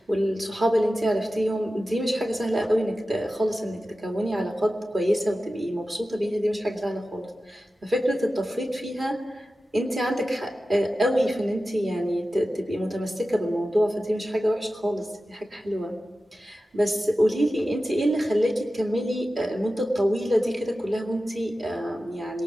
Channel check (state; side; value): normal; both; correlation 0.94